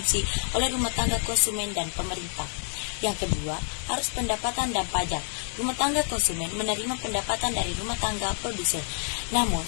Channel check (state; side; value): silent; right; 58 dB below the other